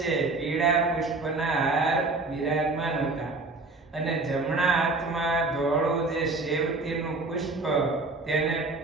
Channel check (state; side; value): quieter; left; 3.4 dB